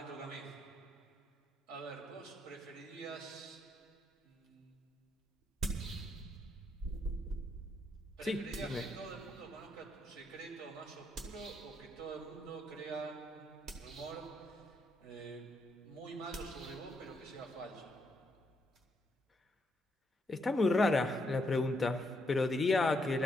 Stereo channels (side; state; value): both; normal; correlation 0.77